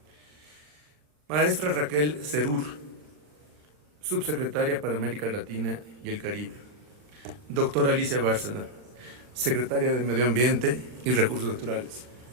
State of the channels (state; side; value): late; left; 40 ms